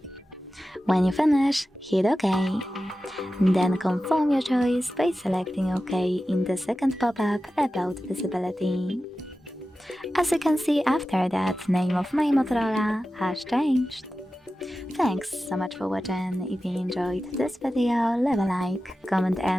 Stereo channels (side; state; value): both; normal; correlation 0.94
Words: When you finish, hit OK. Then confirm your choice by selecting OK in the second pop-up about visibility. As you can see, after that, name of my Motorola has changed. Thanks so much for watching. If you enjoyed this video, leave a like, comment